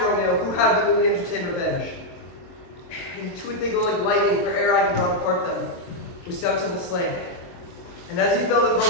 Romeo, who had but newly entertained revenge. And to it they go like lightning, for ere I can draw apart them, was stout Tybalt slain. And as he fell, the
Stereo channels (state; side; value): late; right; 23 ms